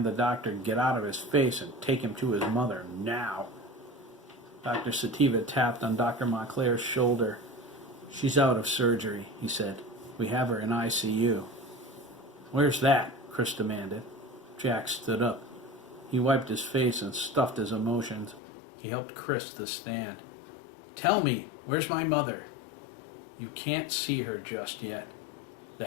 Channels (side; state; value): right; drops out; at 18.4 s